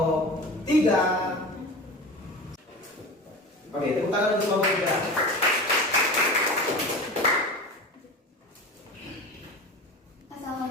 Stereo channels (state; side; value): normal; both; correlation 0.31